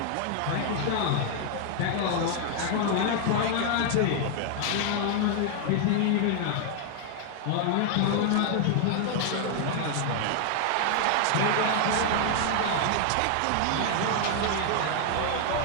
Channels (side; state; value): both; different; correlation 0.00